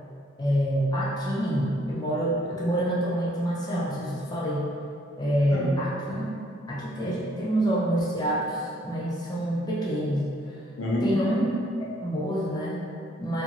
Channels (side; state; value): both; normal; correlation 0.66